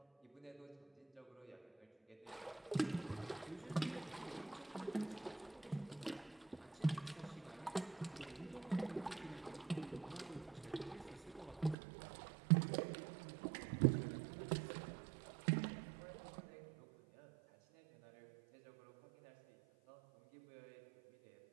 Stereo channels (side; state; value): left; drops out; at 11.8 s